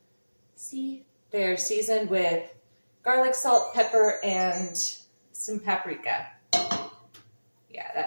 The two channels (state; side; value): inverted; both; correlation -1.00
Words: See? They're seasoned with garlic, salt, pepper, and some paprika. Yeah,